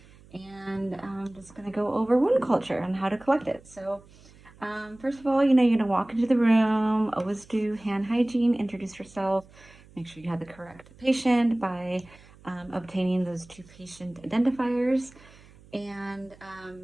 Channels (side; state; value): right; noise; hum, 25 dB below the sound